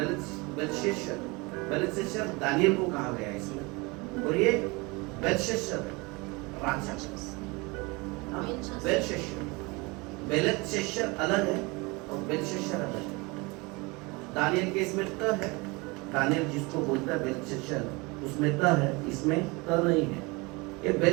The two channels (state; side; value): quieter; left; 26.1 dB